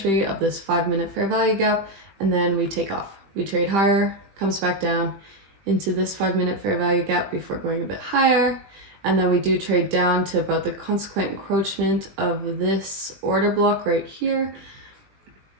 of this 5-minute fair value gap, and then we take off. We trade higher, comes back down into this 5-minute fair value gap before going a bit higher, and then we do trade down to about the consequent encroachment of this order block right here.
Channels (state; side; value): late; left; 20 ms